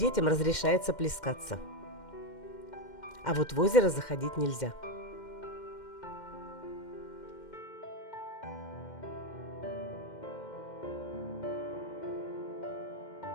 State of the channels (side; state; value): right; late; 2.1 ms